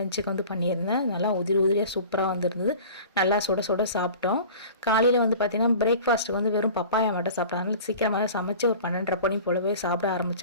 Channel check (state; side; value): inverted; both; correlation -0.41